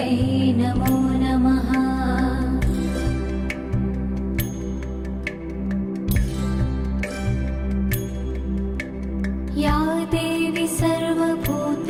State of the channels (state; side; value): identical; both; correlation 1.00